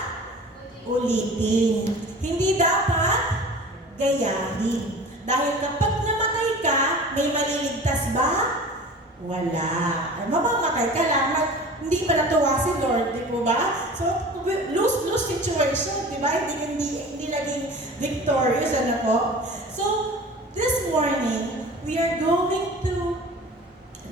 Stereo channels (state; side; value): normal; both; correlation 0.40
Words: ulitin. Hindi dapat gayahin. Dahil kapag namatay ka, may maliligtas ba? Wala. Mamamatay ka lang, hindi pa natuwa si Lord, di po ba? So, lose-lose situation, di ba? Hindi naging victorious, ano po? So, this morning, we are going to